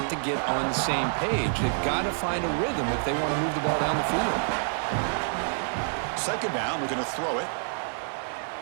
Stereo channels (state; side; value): silent; left; digital silence